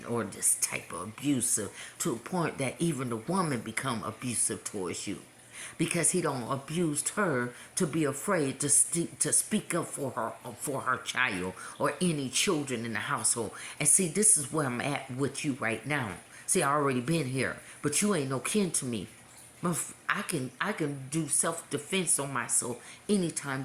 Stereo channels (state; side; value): identical; both; correlation 1.00